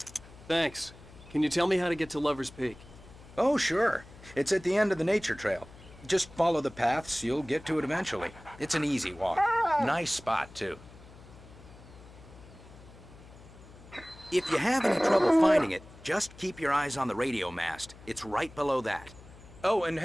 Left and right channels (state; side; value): noise; left; hum, 20 dB below the sound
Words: Thanks. Can you tell me how to get to Lover's Peak? Oh, sure. It's at the end of the nature trail. Just follow the paths, you'll get to it eventually. It's an easy walk. Nice spot, too. If you have any trouble finding it, just keep your eyes on the radio mast. It's right below that. Oh, and